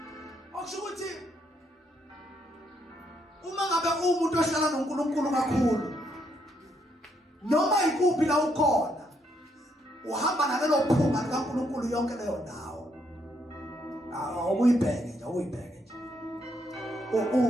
Okusho ukuthi uma ngabe umuntu ohlala noNkulunkulu kakhulu noma ikuphi la ukhona uhamba nalelo phunga likaNkulunkulu yonke leyo ndawo. Awuyibheke nje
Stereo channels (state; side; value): normal; both; correlation 0.74